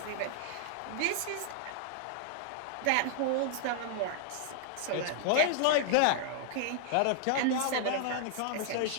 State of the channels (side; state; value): both; different; correlation -0.01